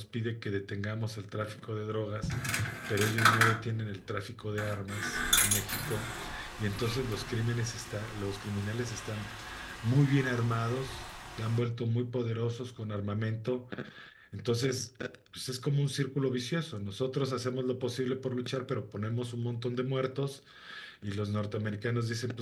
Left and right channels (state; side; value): identical; both; correlation 1.00